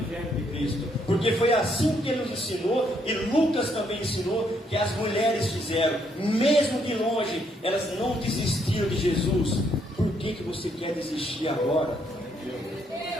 de Cristo, porque foi assim que Ele nos ensinou, e Lucas também ensinou, que as mulheres fizeram, mesmo de longe, elas não desistiram de Jesus. Por que você quer desistir agora?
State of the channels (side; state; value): both; normal; correlation 0.72